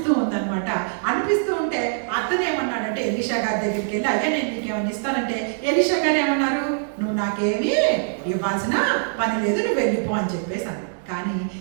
ఉందన్నమాట. అనిపిస్తూ ఉంటే అతను ఏమన్నాడంటే ఎలీషా గారి దగ్గరికి వెళ్ళి, అయ్యా నేను నీకు ఏమైనా ఇస్తానంటే ఎలీషా గారు ఏమన్నారు, నువ్వు నాకేమీ ఇవ్వాల్సిన పని లేదు, నువ్వు వెళ్ళిపో అని చెప్పేసి అన్నాడు. కానీ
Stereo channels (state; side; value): silent; left; 63 dB below the other